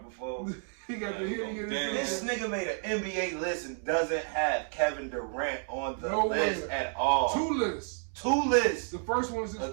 before. This nigga made an NBA list and doesn't have Kevin Durant on the list at all. 2 lists. The first one is his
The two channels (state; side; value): silent; left; 57 dB below the other